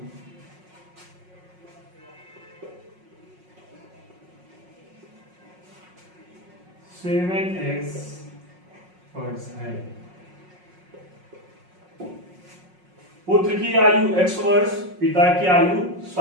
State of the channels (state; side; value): late; left; 5.5 ms